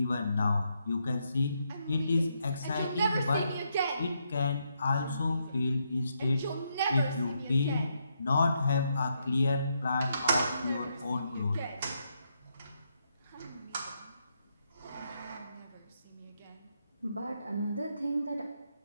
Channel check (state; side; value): inverted; both; correlation -0.79